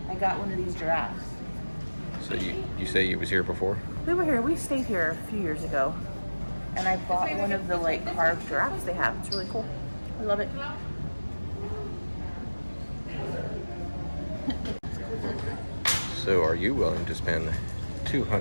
I got one of these giraffes. So you say you was here before? We were here. We stayed here a few years ago, and I bought one of the like carved giraffes they have. It's really cool. I love it. So are you willing to spend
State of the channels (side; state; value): both; inverted; correlation -1.00